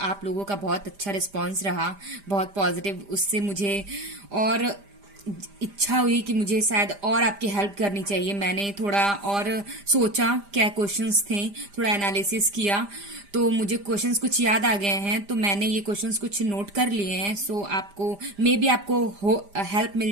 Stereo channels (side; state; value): left; late; 5.0 ms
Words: आप लोगों का बहुत अच्छा रिस्पांस रहा, बहुत पॉजिटिव। उससे मुझे और इच्छा हुई कि मुझे शायद और आपकी हेल्प करनी चाहिए। मैंने थोड़ा और सोचा क्या क्वेश्चंस थे, थोड़ा एनालिसिस किया तो मुझे क्वेश्चंस कुछ याद आ गए हैं, तो मैंने ये क्वेश्चंस कुछ नोट कर लिए हैं। आपको मे बी आपको हेल्प